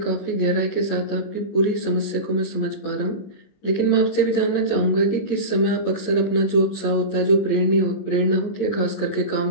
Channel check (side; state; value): right; late; 20 ms